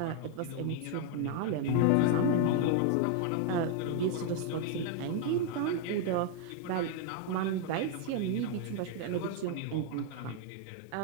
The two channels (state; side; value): different; both; correlation 0.01